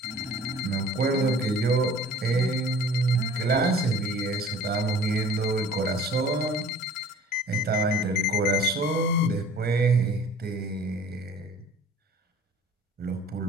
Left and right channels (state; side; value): normal; both; correlation 0.49